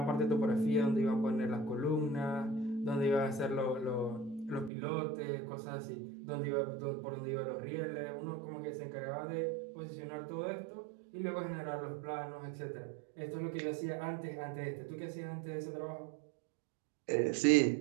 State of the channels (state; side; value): drops out; left; at 4.7 s